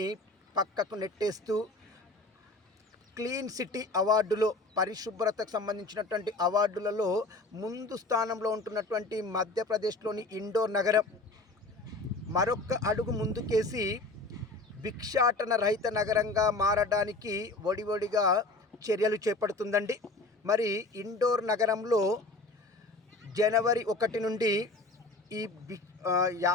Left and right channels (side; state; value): right; quieter; 3.1 dB